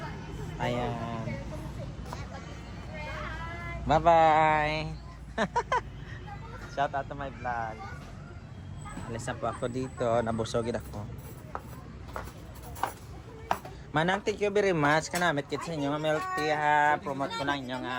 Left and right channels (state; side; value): identical; both; correlation 1.00